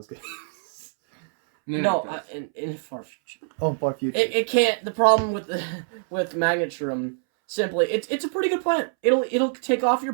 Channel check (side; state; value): left; silent; 62 dB below the other